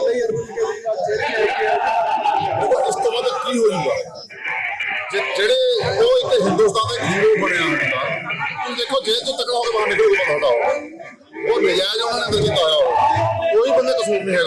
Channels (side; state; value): both; identical; correlation 1.00